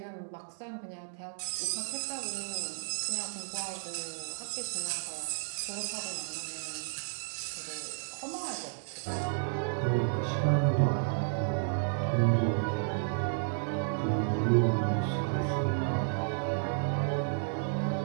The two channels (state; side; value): silent; left; digital silence